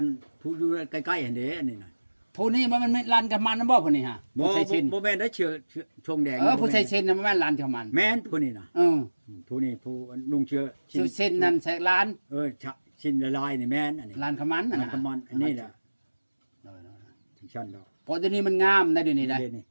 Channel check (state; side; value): inverted; both; correlation -1.00